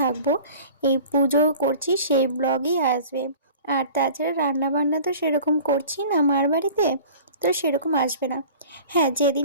এই পুজো করছি সেই ব্লগই আসবে। আর তাছাড়া রান্নাবান্না তো সেরকম করছি না মার বাড়িতে, তো সেরকম আসবে না। হ্যাঁ,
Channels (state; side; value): inverted; both; correlation -0.43